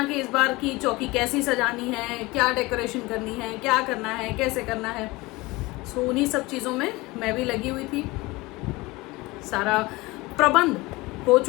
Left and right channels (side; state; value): right; quieter; 22.0 dB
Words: कि इस बार की चौकी कैसी सजानी है, क्या डेकोरेशन करनी है, क्या करना है, कैसे करना है। सो उन्हीं सब चीज़ों में मैं भी लगी हुई थी। सारा प्रबंध हो